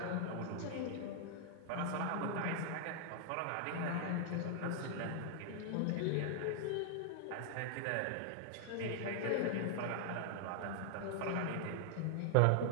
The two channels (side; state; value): both; different; correlation -0.01